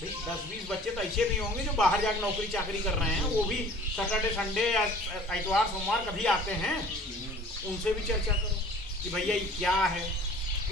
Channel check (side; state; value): both; normal; correlation 0.48